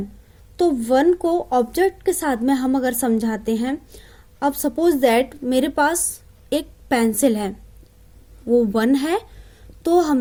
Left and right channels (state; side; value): identical; both; correlation 1.00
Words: तो 1 को ऑब्जेक्ट के साथ में हम अगर समझाते हैं, अब सपोज दैट मेरे पास एक पेंसिल है, वो 1 है, तो